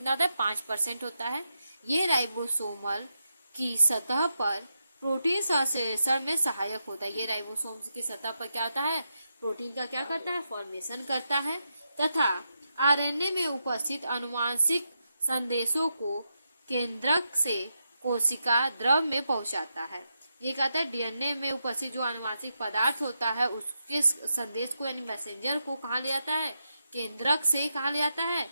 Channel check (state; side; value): inverted; both; correlation -0.85